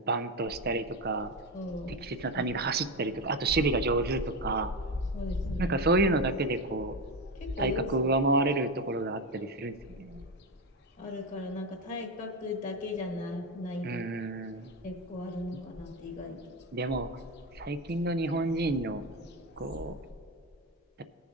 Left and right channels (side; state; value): both; normal; correlation 0.15